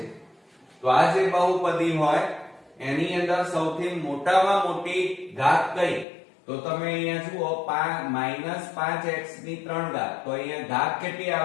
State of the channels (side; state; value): right; drops out; at 6.1 s